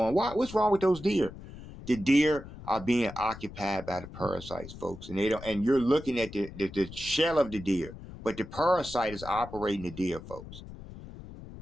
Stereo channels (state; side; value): noise; left; rumble, 14 dB below the sound